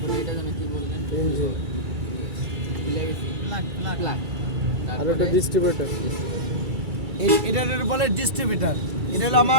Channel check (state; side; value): late; left; 2.3 ms